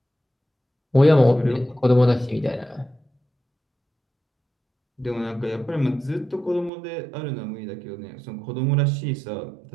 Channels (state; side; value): drops out; left; at 6.7 s